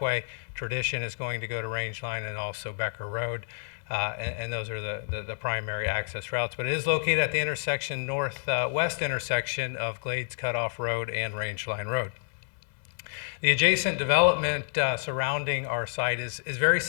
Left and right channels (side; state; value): right; silent; 58 dB below the other